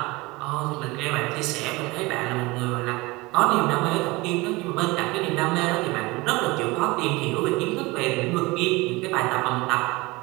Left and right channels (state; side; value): quieter; left; 22.8 dB